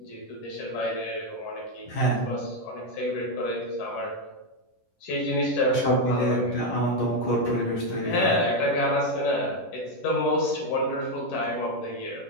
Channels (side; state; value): right; late; 10 ms